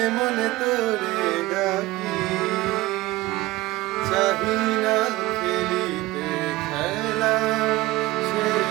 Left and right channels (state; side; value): quieter; left; 18.9 dB